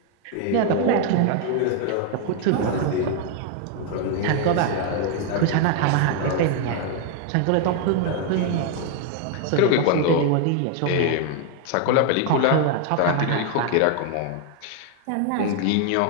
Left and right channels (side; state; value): both; different; correlation 0.00